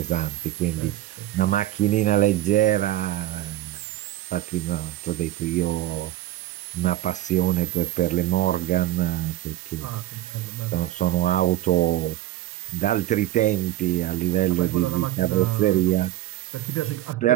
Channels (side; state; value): left; quieter; 14.7 dB